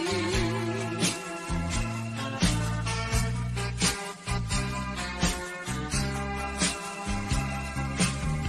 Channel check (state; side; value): identical; both; correlation 1.00